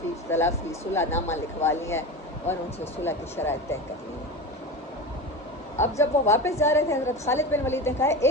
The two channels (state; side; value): normal; both; correlation 0.26